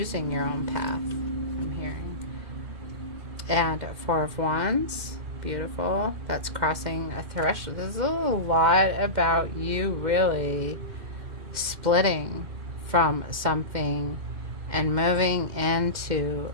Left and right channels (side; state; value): left; late; 2.1 ms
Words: your own path, I'm hearing. And Four of Wands, beautiful. That's crossing a threshold. There's a lot about you really splitting from something and moving into